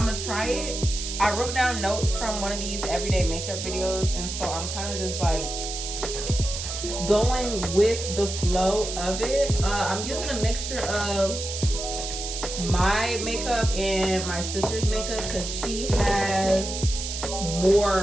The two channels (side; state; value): right; noise; hiss, 6 dB below the sound